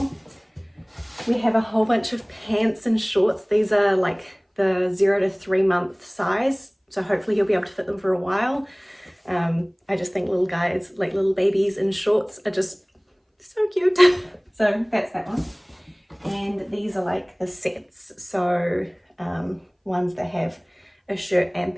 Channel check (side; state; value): both; identical; correlation 1.00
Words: We have a whole bunch of pants and shorts. These are like the 0 to 3 month size, so hopefully he'll be able to fit them for a while. I just think little guys, like little babies in shorts, are just so cute. So that's that one. And these are like the sets, so ones that have a shirt and